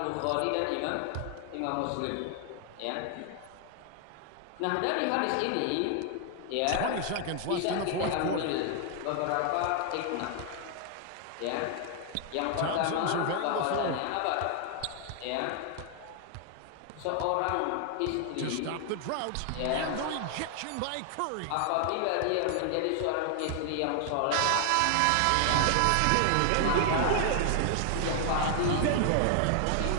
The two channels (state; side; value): different; both; correlation 0.00